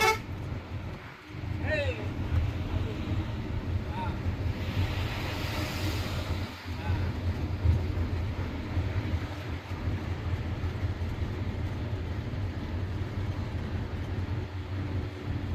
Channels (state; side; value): identical; both; correlation 1.00